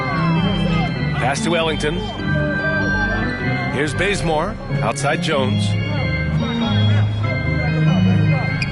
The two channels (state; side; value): identical; both; correlation 1.00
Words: Pass to Ellington. Here's Bazemore. Outside Jones.